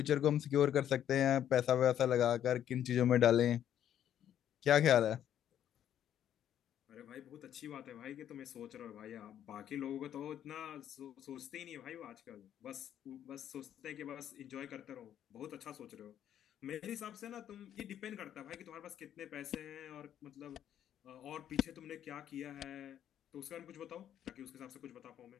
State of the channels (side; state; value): right; quieter; 10.4 dB